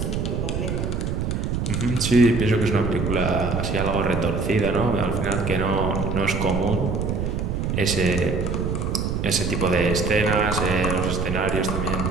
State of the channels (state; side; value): noise; right; rumble, 1 dB below the sound